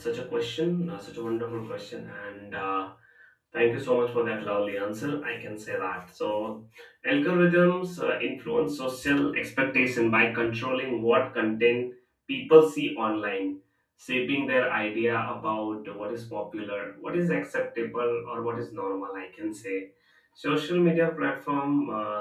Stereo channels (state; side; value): identical; both; correlation 1.00